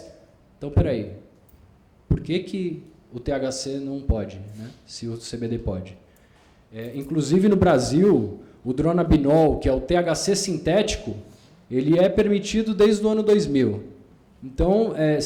Então, peraí, por que o THC não pode, né, se o CBD pode? Inclusive, no Brasil, o dronabinol, que é o THC sintético, ele é permitido desde o ano 2000. Então,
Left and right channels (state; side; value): identical; both; correlation 1.00